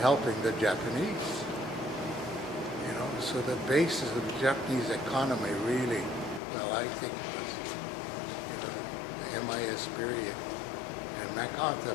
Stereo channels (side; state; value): right; drops out; at 6.4 s